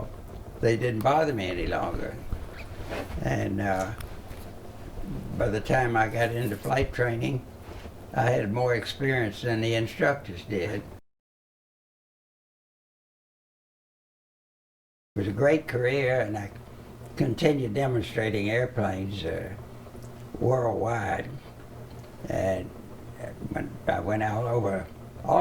they didn't bother me any longer. And by the time I got into flight training, I had more experience than the instructors did. It was a great career, and I continued demonstrating airplanes worldwide. And I went all over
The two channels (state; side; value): identical; both; correlation 1.00